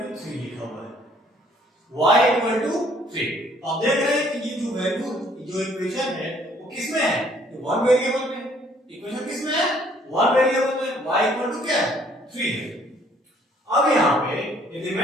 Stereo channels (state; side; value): normal; both; correlation 0.61